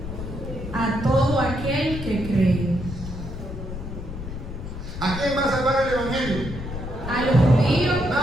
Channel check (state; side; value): noise; left; rumble, 8 dB below the sound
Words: A todo aquel que cree. ¿A quién va a salvar el Evangelio? A los judíos.